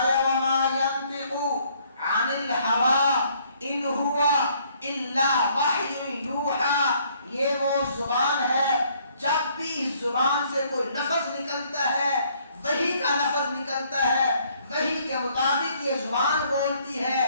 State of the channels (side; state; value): both; inverted; correlation -0.65